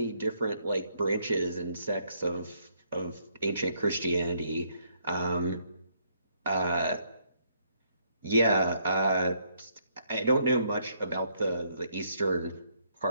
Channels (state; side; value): inverted; both; correlation -0.71